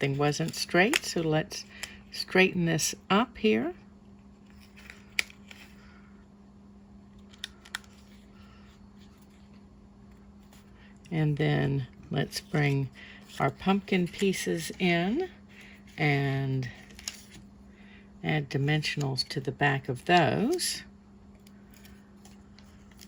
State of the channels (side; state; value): both; identical; correlation 1.00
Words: wasn't straight, so let's straighten this up here. And then let's bring our pumpkin pieces in and add dimensionals to the back of those.